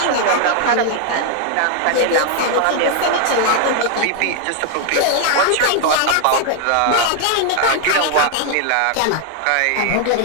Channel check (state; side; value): different; both; correlation 0.00